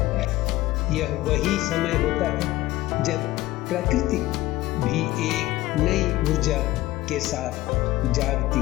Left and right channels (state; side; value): quieter; right; 17.1 dB